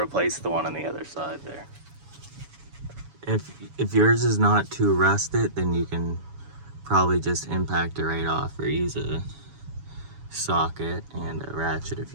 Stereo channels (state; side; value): late; left; 7.1 ms